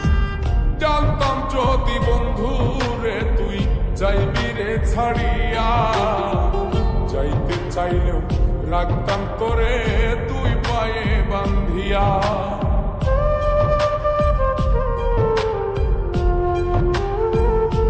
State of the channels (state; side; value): identical; both; correlation 1.00